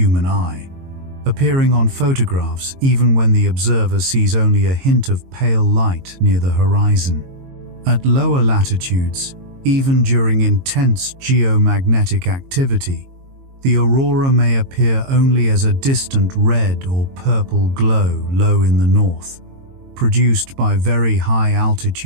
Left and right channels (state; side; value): late; left; 22 ms